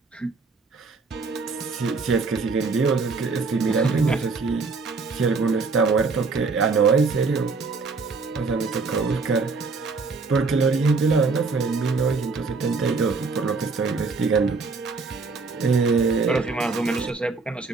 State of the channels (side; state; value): left; quieter; 4.3 dB